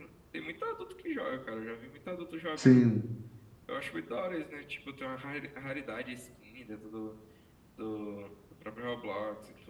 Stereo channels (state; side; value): identical; both; correlation 1.00